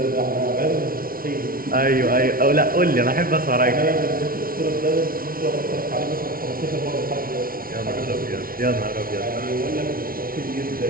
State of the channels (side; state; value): left; late; 0.43 ms